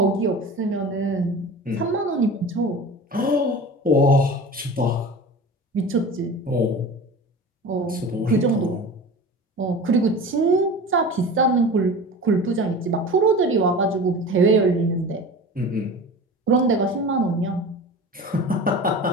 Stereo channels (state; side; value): normal; both; correlation 0.34